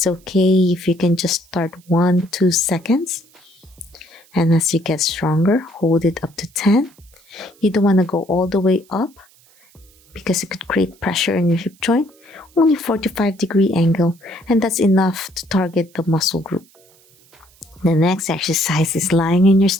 okay if you can just start 1, 2 seconds. And as you get stronger, hold it up to 10. You don't want to go all the way up because it could create pressure in your hip joint. Only 45-degree angle, and that's enough to target the muscle group. The next exercise is lying in your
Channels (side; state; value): right; noise; hiss, 30 dB below the sound